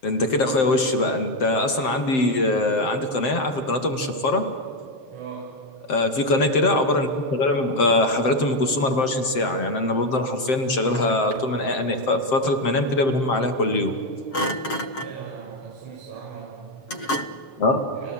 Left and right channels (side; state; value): right; late; 7.6 ms